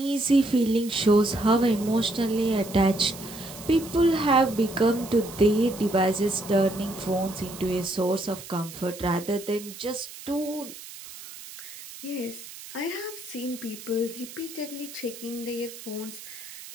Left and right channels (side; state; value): right; noise; hiss, 14 dB below the sound